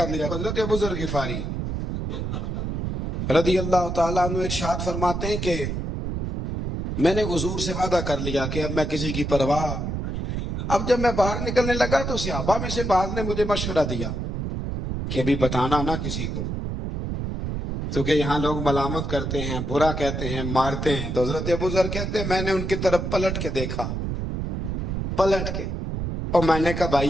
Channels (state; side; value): noise; right; rumble, 3 dB below the sound